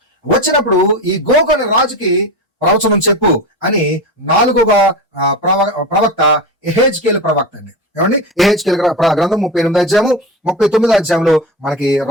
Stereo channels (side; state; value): both; normal; correlation 0.24